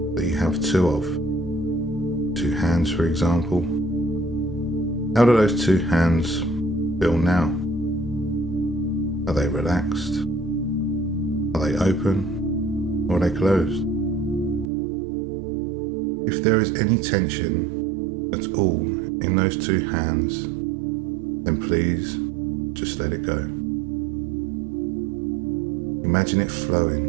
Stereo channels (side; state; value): left; drops out; at 14.7 s